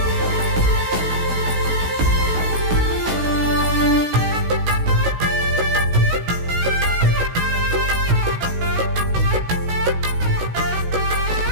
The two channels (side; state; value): left; late; 16 ms